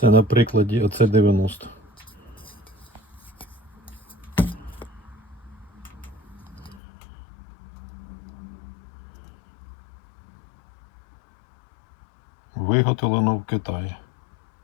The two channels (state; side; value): drops out; right; at 6.8 s